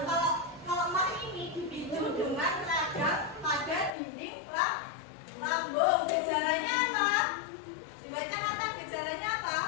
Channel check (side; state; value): right; drops out; at 3.9 s